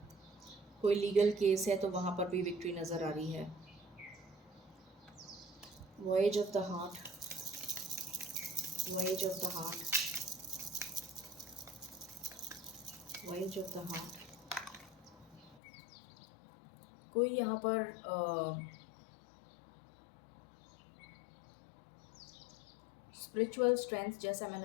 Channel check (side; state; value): right; drops out; at 15.6 s